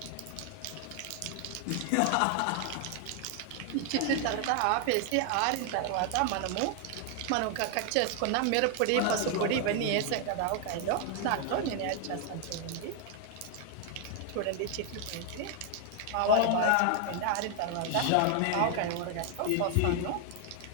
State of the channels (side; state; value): both; different; correlation 0.00